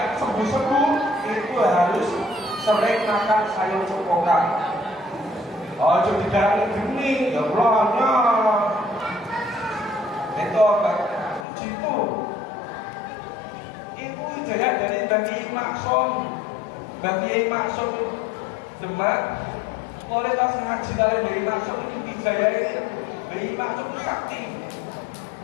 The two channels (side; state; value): right; drops out; at 11.5 s